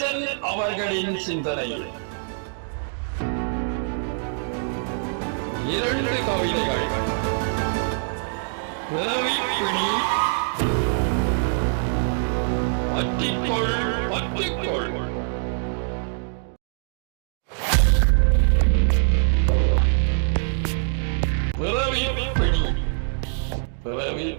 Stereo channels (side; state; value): left; silent; digital silence